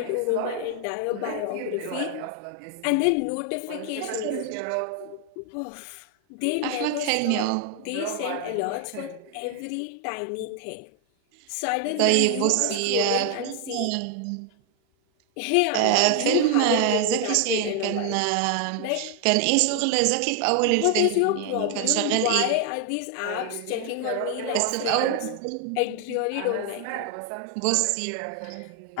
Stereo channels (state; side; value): different; both; correlation 0.00